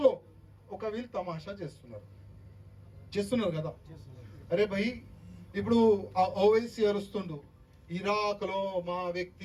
లో ఒక వీళ్ళు తమాషా చేస్తున్నారు కదా. అరే భయ్, ఇప్పుడు ఆ ఓవైసీ అరుస్తుండు, ఇరాక్ లో మా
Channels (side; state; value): both; identical; correlation 1.00